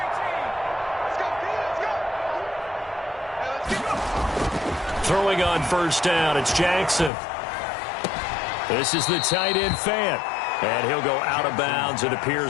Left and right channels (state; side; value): drops out; right; at 7.1 s